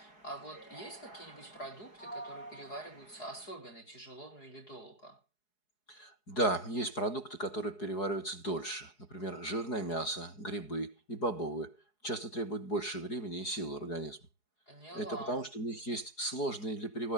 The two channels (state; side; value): late; right; 4.8 ms